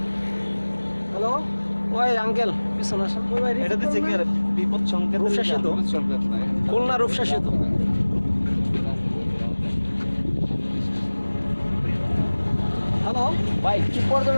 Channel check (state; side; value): inverted; both; correlation -1.00